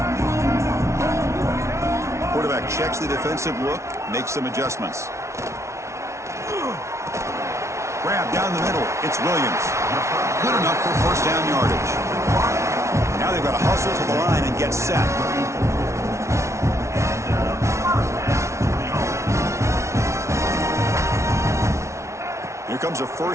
Quarterback checks the defensive look, makes some adjustments. Grab down the middle. It's Williams. Good enough for first down yardage. Now they've got to hustle to the line and get set. Here comes a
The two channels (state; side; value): late; left; 0.13 ms